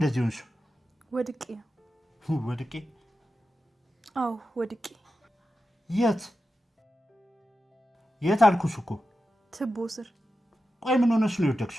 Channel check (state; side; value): normal; both; correlation 0.91